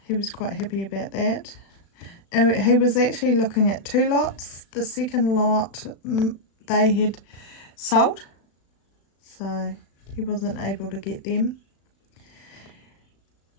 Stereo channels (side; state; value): right; late; 35 ms